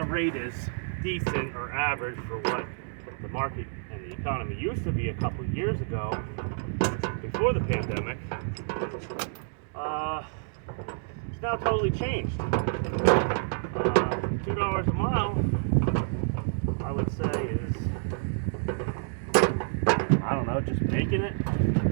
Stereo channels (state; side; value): silent; left; digital silence